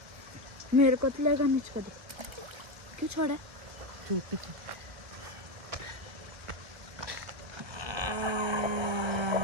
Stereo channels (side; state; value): left; late; 1.3 ms